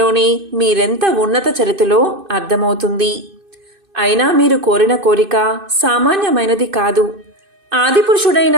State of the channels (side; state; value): left; late; 2.5 ms